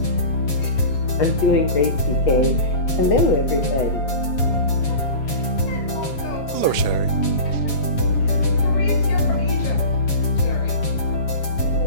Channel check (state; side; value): late; right; 7.2 ms